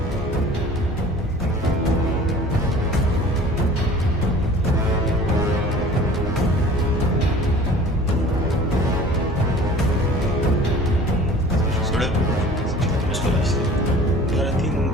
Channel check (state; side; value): normal; both; correlation 0.46